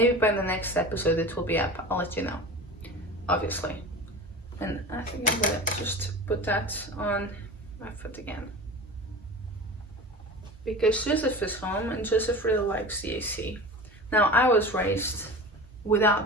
by the next episode it will be up. I'll let you know, obviously. And I think I'm gonna just put that on my foot again, because Joseph is home and Joseph really likes the AC. Now, I was raised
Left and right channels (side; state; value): both; normal; correlation 0.33